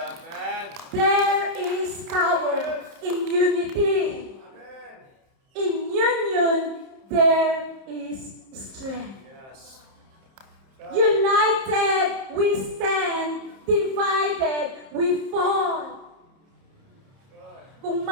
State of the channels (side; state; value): left; late; 30 ms